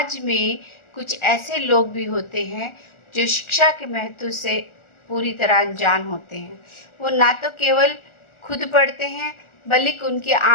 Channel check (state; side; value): late; right; 1.4 ms